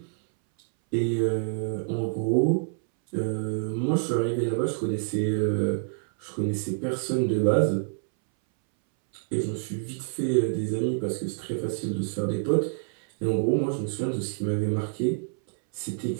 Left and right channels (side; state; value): left; silent; 60 dB below the other